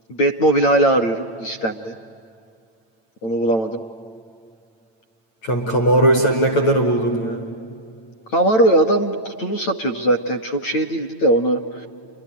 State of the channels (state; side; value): late; right; 9.0 ms